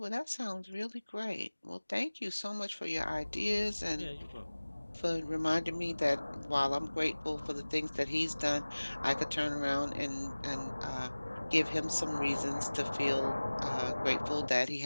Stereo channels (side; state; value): both; inverted; correlation -1.00